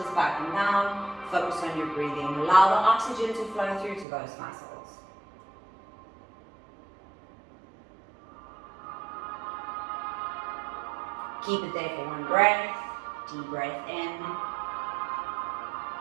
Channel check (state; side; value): drops out; left; at 4.0 s